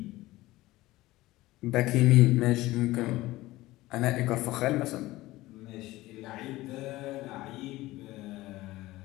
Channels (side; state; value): right; quieter; 18.1 dB